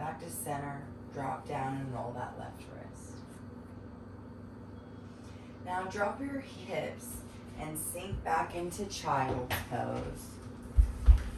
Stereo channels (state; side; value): identical; both; correlation 1.00